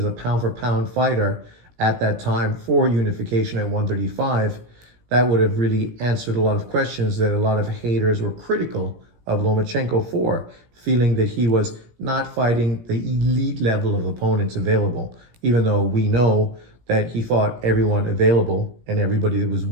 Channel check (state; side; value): late; left; 17 ms